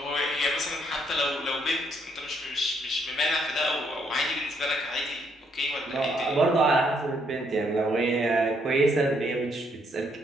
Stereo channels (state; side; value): normal; both; correlation 0.72